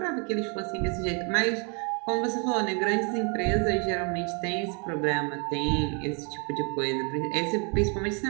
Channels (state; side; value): quieter; left; 35.5 dB